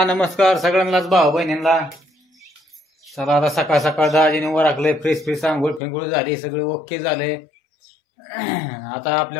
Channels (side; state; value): right; drops out; at 5.8 s